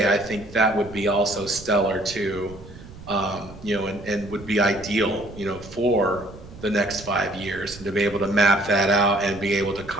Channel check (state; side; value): noise; right; rumble, 17 dB below the sound